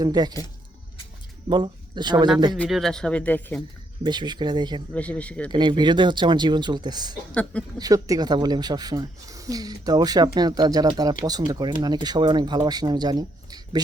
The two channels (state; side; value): normal; both; correlation 0.74